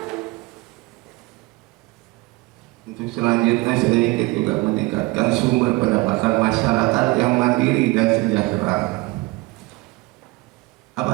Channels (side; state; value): left; quieter; 23.0 dB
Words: Untuk selanjutnya saya ingin juga meningkatkan sumber pendapatan masyarakat yang mandiri dan sejahtera.